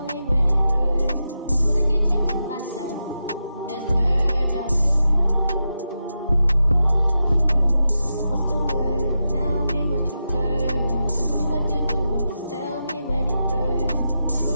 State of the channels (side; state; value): both; inverted; correlation -0.88